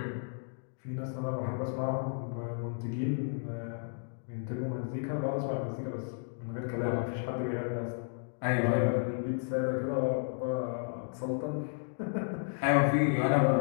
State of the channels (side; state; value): right; silent; digital silence